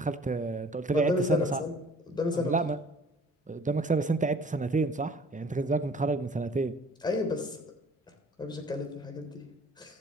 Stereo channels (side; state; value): both; normal; correlation 0.52